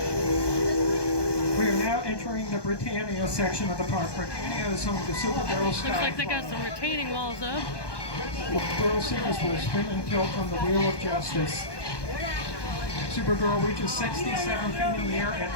now entering the Britannia section of the park. Britannia is home to Super Barrel Sky. Looks like they got some retaining walls up. Barrel Seekers will spin and tilt on the Wheel of Justice. Super Barrel reaches 67 feet in the air at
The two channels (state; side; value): late; right; 1.2 ms